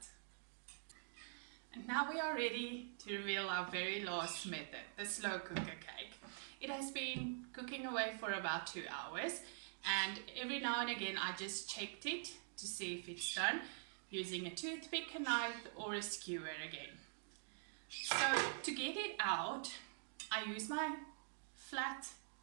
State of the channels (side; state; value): left; silent; digital silence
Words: And now we are ready to reveal our very last method, the slow cooker cake. It has been cooking away for about 2 hours, and every now and again I just checked it to see if it's done using a toothpick, a knife or a skewer again. So to get it out, I use my flat